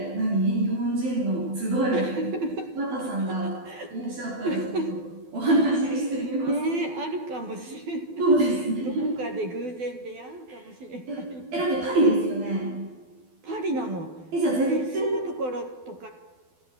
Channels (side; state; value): left; late; 12 ms